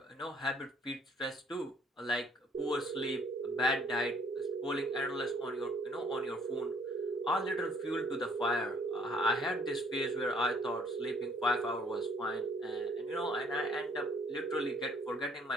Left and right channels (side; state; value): both; normal; correlation 0.61